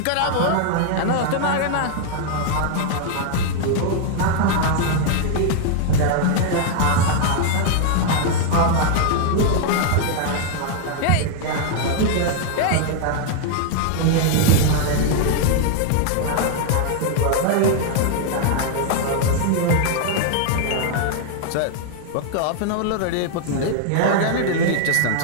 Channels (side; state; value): both; different; correlation 0.00